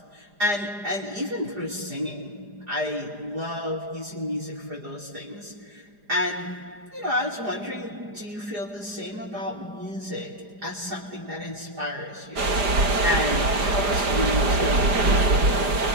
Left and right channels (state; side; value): late; left; 4.9 ms